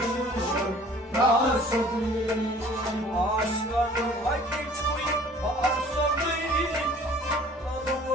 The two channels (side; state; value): both; normal; correlation 0.51